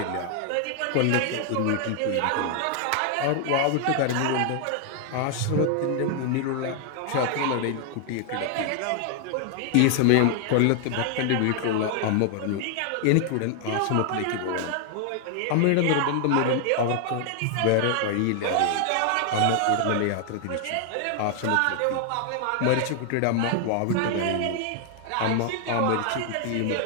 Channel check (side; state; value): both; different; correlation 0.00